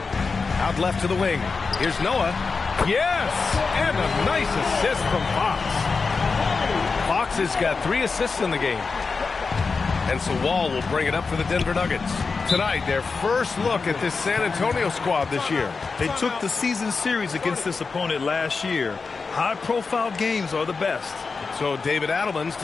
Out left to the wing. Here's Noah. Yes! And a nice assist from Fox. Fox has got 3 assists in the game. And so Wall will bring it up for the Denver Nuggets. Tonight, their first look at this San Antonio squad this year. They took the season series against this opponent last year. High-profile games are the best. So David Adelman's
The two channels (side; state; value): right; quieter; 4.6 dB